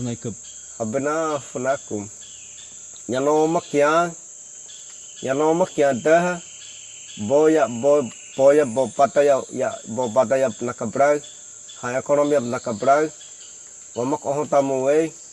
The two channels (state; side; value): identical; both; correlation 1.00